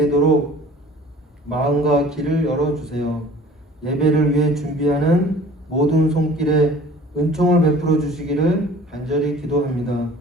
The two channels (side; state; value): both; normal; correlation 0.47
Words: 마음과 길을 열어주세요. 예배를 위해 준비하는 모든 손길에 은총을 베풀어 주시기를 간절히 기도합니다.